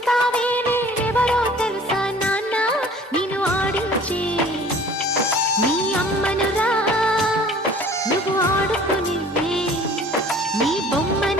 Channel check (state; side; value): normal; both; correlation 0.49